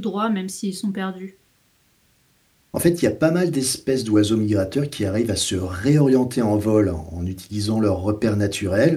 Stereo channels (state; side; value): identical; both; correlation 1.00